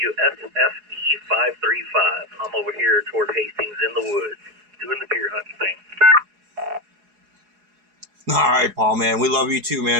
535. I'm over here toward Hastings in the woods, doing the deer hunting thing. All right, Paul, man. We love you too,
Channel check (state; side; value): late; left; 4.8 ms